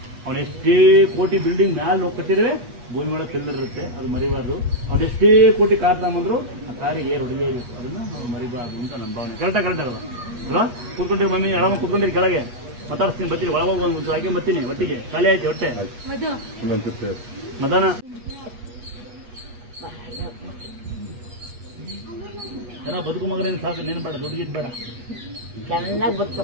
ಅವನು ಎಷ್ಟೇ ಕೋಟಿ ಬಿಲ್ಡಿಂಗ್ ಮ್ಯಾಲೆ ಹೋಗಿ ಕಟ್ಟಿದ್ರೆ ಭೂಮಿ ಒಳಗೆ ತಿಳ್ದಿರುತ್ತೆ. ಅದು ಮರಿಬಾರ್ದು. ಅವ್ರು ಎಷ್ಟೇ ಕೋಟಿ ಕಾರ್ ತಗೊಂಬಂದ್ರು ಆ ಕಾರಿಗೆ ಏರ್ ಹೊಡಿಲೇಬೇಕು. ಅದನ್ನ ನಾವು ಮರಿಬಾರ್ದು ಅಂತ ನನ್ನ ಭಾವನೆ. ಕರೆಕ್ಟಾಗಿ ಅಲ್ವಾ? ಅಲ್ವಾ? ಕೂತ್ಕೊಂಡಿರಿ ಮಮ್ಮಿ, ಎಡಮ ಕೂತ್ಕೊಂಡಿರಿ ಕೆಳಗೆ. ಮಾತಾಡ್ತೀನಿ, ಬರ್ತೀನಿ. ಒಳಗೋಗಿ ಒಂದು ಹಾಕಿ ಬರ್ತೀನಿ. ಒಟ್ಟಿಗೆ ಖಾಲಿ ಆಯ್ತು ಹೊಟ್ಟೆ. ಮದಾನ ಜನ ಬದುಕು ಮಗನೇನು ಸಾಕು. ನೀನು ಬೇಡ, ದುಡ್ಡು ಗಿಡ್ ಬೇಡ. ಚೆನ್ನಾಗಿ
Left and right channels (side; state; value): left; late; 8.3 ms